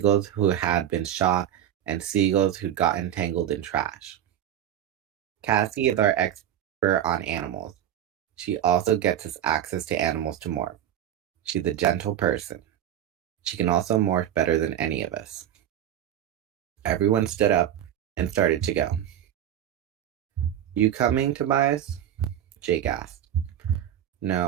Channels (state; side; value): quieter; left; 10.8 dB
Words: who had been shot and seagulls who'd gotten tangled in trash. Cassie is our expert on animals. She also gets us access to animals to morph. She's a gentle person. She can also morph better than any of us. Everyone stood up and started to go. You coming, Tobias? Jake asked.